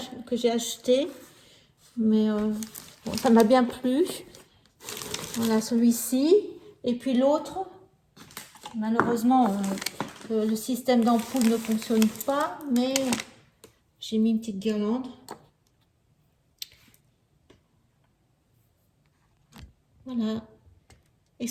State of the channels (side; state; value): both; identical; correlation 1.00